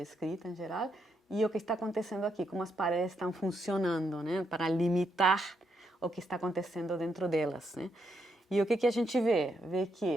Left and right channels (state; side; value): normal; both; correlation 0.79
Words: escrita em geral, e o que está acontecendo aqui, como as paredes estão funcionando, né, para limitar o que está acontecendo dentro delas, né? E o que a gente vê? Vê